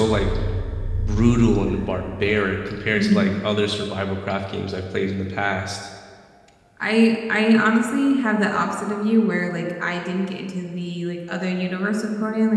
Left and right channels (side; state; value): both; identical; correlation 1.00